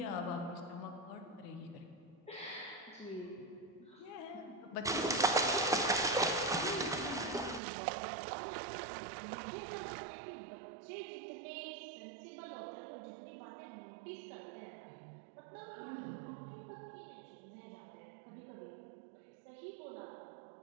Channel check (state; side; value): drops out; left; at 7.6 s